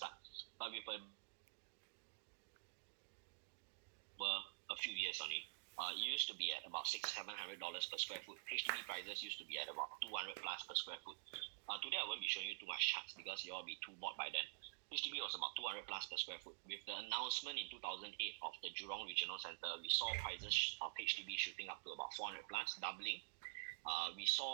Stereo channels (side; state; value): left; silent; digital silence